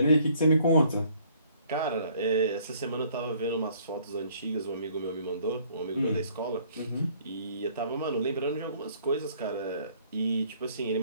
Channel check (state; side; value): inverted; both; correlation -0.60